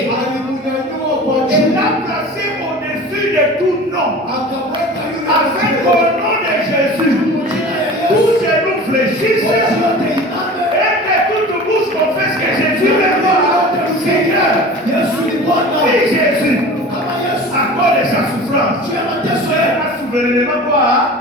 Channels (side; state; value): both; normal; correlation 0.38